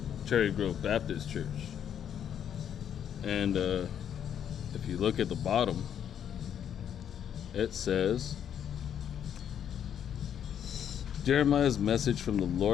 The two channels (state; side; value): quieter; right; 9.1 dB